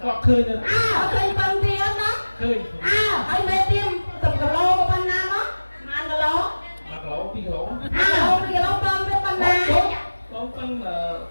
khơi được khơi bằng tiền đó khơi ai mê tim tập cà lô của ban nam đó mà ăn cà lô mà cà lô pi cà lô pi cà lô bơm với ban nam lô bơm là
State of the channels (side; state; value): both; inverted; correlation -1.00